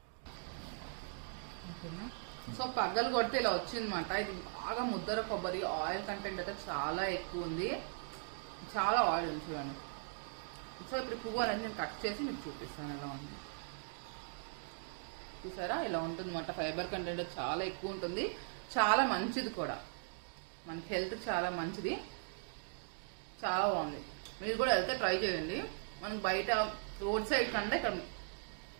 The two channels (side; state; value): left; silent; digital silence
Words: ఓకేనా? సో పగ్గలు కొడితే ఇలా వచ్చిందన్నమాట. ఇది బాగా ముద్దర కొబ్బరి, ఆయిల్ కంటెంట్ అయితే చాలా ఎక్కువ ఉంది, చాలా ఆయిల్ ఉంది చూడండి. సో ఇప్పుడు పువ్వు అనేది నేను కట్ చేసి మీకు చూపిస్తాను ఎలా ఉంది. చూసారా ఇలా ఉంటుంది అన్నమాట. ఫైబర్ కంటెంట్ చాలా ఎక్కువ ఉంటుంది, చాలా మంచిది కూడా, మనకి హెల్త్ చాలా మంచిది, చాలా బాగుంది. మీరు కూడా వెళ్తే ట్రై చేయండి. మనకి బయట రోడ్ సైడ్ కంటే ఇక్కడ